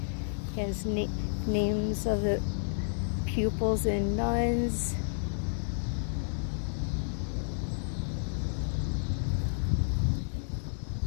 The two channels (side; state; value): right; silent; digital silence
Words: has names of the pupils and nuns.